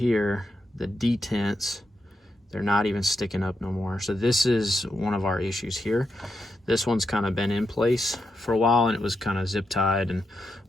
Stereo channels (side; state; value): both; normal; correlation 0.85